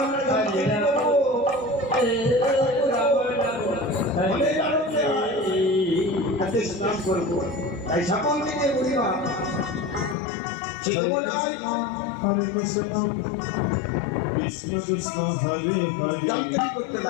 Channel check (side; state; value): right; drops out; at 10.2 s